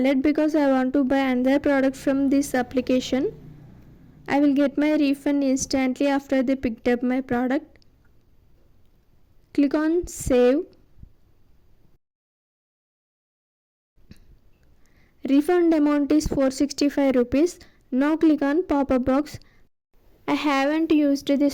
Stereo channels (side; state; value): both; identical; correlation 1.00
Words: because I want to buy another product from this application. I will get my refund instantly after they picked up my product. Click on save. Refund amount is 465 rupees. Now click on pop-up box. I haven't used